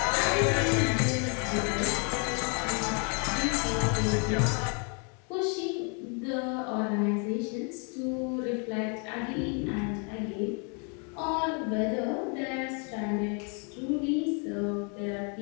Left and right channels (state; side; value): quieter; right; 37.4 dB